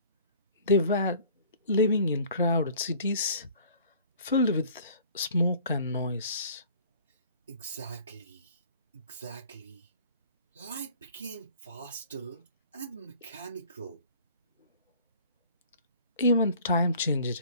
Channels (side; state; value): both; inverted; correlation -0.50